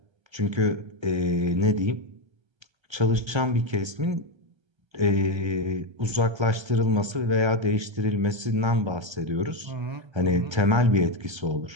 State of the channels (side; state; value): left; late; 1.3 ms